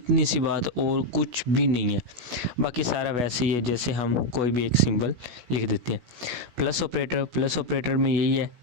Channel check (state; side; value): late; left; 16 ms